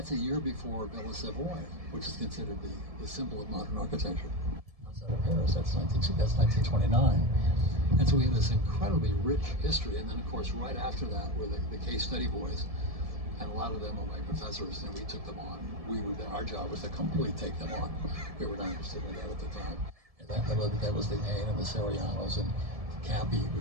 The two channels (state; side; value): late; left; 1.7 ms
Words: a year before Villa Savoy, which is considered the symbol of modern architecture. Outside of Paris, that's 1929. And so we have this incredibly rich history. And then, of course, right after that were the case study boys, and a lot of them are my professors, and we took them on. Our job was to completely take them on. We were not interested in that at the time. And that was the Ain and the Sarianos, and Cappy